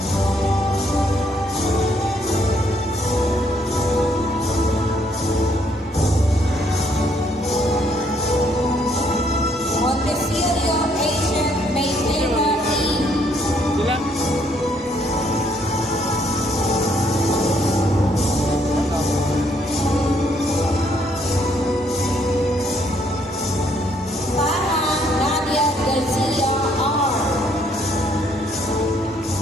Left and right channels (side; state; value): both; normal; correlation 0.69